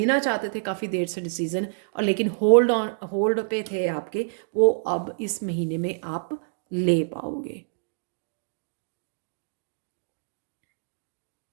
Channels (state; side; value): silent; left; digital silence